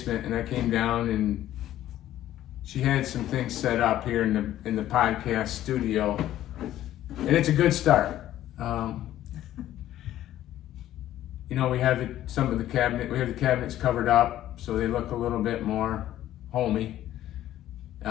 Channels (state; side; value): quieter; right; 13.0 dB